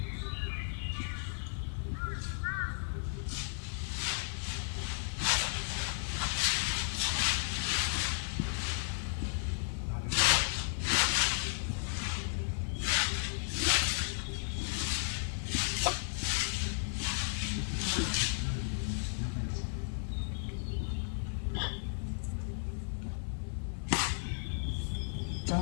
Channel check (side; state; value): right; silent; 55 dB below the other